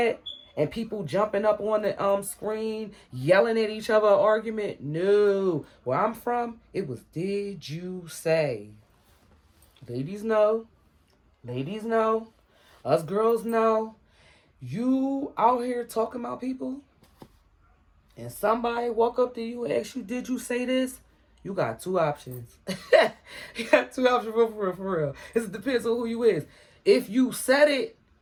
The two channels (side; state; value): both; identical; correlation 1.00